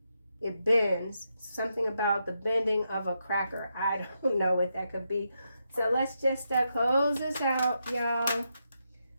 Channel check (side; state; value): both; inverted; correlation -0.83